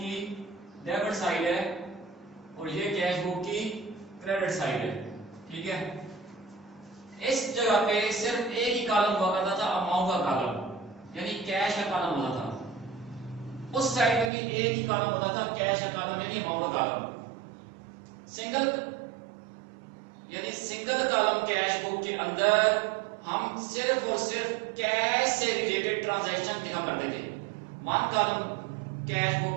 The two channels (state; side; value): drops out; left; at 14.3 s